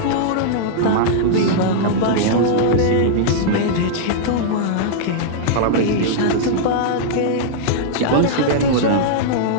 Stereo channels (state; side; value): different; both; correlation -0.02